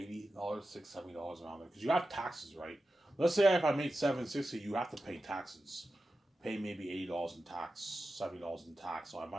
$670 around there. Because you have taxes, right? Let's say if I made $760, you have to pay taxes. Pay maybe $80 in tax, $70 in tax. So I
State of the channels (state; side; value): normal; both; correlation 0.92